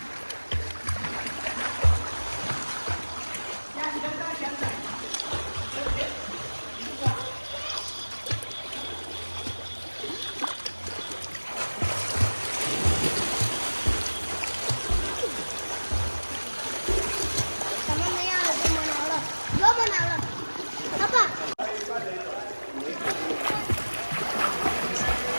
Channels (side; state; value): both; inverted; correlation -1.00